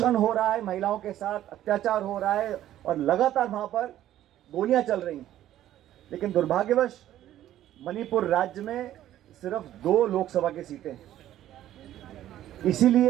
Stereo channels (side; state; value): left; quieter; 12.7 dB